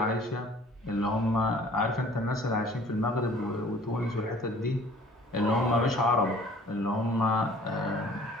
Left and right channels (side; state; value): both; normal; correlation 0.52